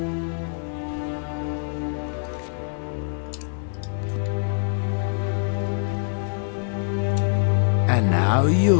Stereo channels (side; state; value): right; silent; digital silence